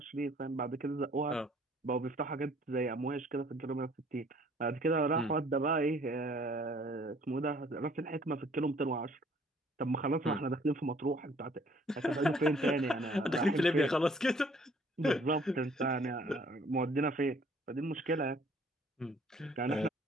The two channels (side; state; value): both; normal; correlation 0.58